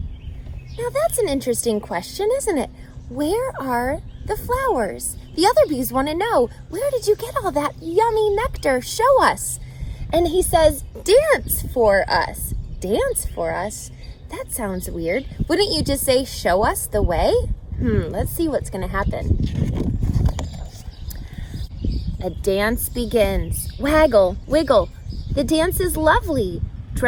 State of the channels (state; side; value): identical; both; correlation 1.00